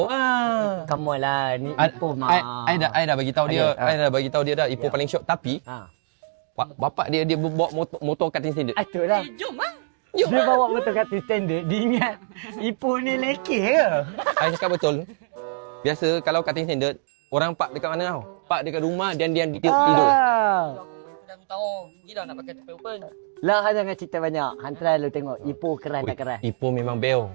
ah. Come on lah, ni Ipoh mah. I dah bagi tahu dia. Okay, I dah bagi tahu dia dah Ipoh paling syok, tapi bapak dia bawa motor cutting standard. Itulah. Jom ah. Jom. Dia bawa motor kat standard, dia ingat Ipoh ni lekeh ke? I cakap betul. Biasa kalau cutting standard, orang park dekat mana tau? Park dekat rumah dan dia tidur. Dah aku tahu. Gila nak pakai tepel open. Lah, jangan cerita banyak. Hantar lu tengok Ipoh keras tak keras. Ipoh memang beo.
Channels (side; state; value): left; silent; digital silence